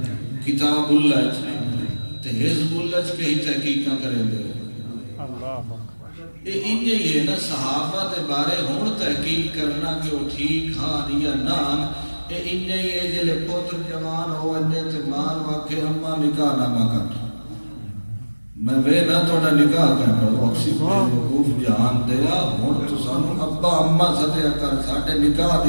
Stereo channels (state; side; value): inverted; both; correlation -1.00